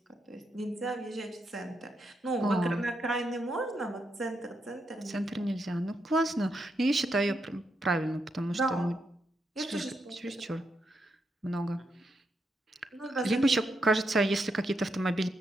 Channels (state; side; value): normal; both; correlation 0.82